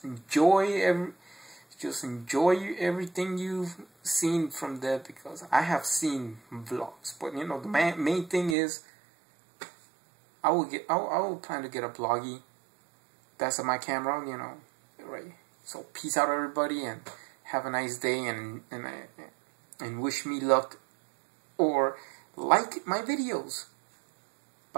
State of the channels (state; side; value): drops out; left; at 8.6 s